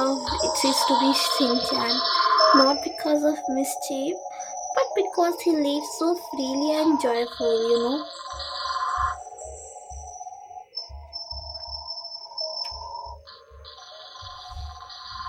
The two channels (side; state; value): both; identical; correlation 1.00